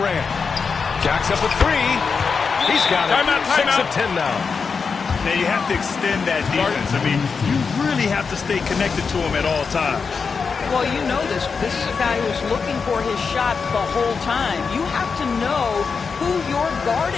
Jacks up a three. He's got it. Timeout, 6 timeout. of 10 now. Now you have to extend that defense. I mean, you really have to stay connected to him at all times. Well, you know this. This is a guy who's looking for his shot the whole time. You have to know who you're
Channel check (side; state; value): right; quieter; 5.4 dB